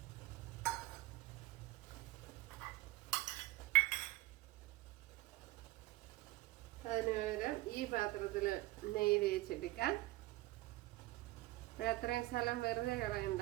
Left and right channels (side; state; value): left; quieter; 19.4 dB